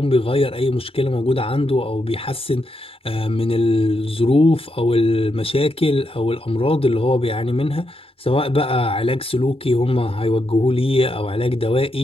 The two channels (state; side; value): normal; both; correlation 0.82